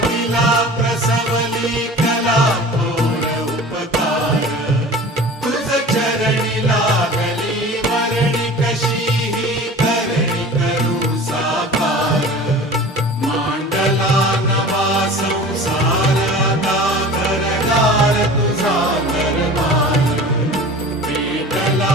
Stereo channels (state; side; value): normal; both; correlation 0.39